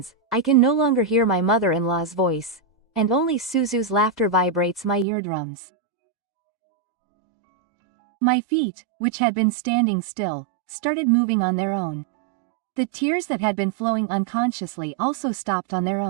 I can no longer hear my mother-in-law's voice, and only Suzu's laughter vibrates my eardrums. My feet, which had been standing still, started moving on their own. The tears that had been flowing unconsciously also stopped on their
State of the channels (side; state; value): left; drops out; at 5.1 s